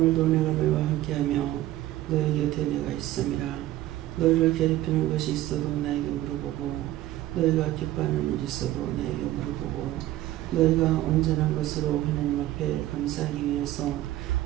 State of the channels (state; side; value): quieter; left; 15.0 dB